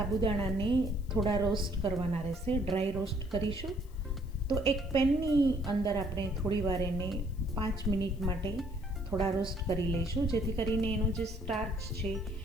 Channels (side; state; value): left; noise; hiss, 29 dB below the sound